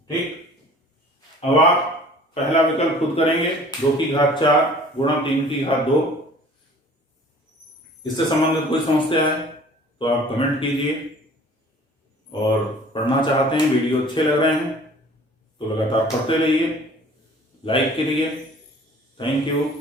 ठीक। अब आप पहला विकल्प खुद करेंगे, 2 की घात 4 गुणा 3 की घात 2। इससे संबंधित कोई समस्या है तो आप कमेंट कीजिए, और पढ़ना चाहते हैं, वीडियो अच्छे लग रहे हैं तो लगातार पढ़ते रहिए, लाइक करिए। Thank you,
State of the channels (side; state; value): both; normal; correlation 0.49